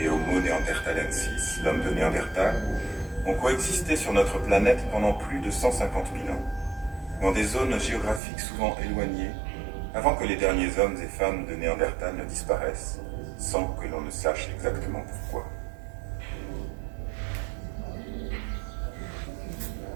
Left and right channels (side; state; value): left; drops out; at 8.2 s